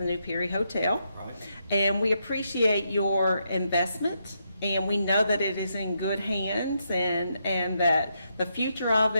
new Perry Hotel. Right. And we appreciate your investment, and we know that it is in good hands, and that the future of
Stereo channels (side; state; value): both; inverted; correlation -0.80